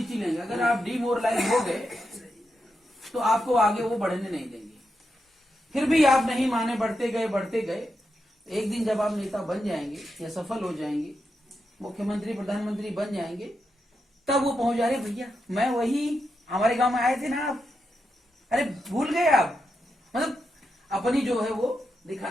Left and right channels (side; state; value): both; normal; correlation 0.86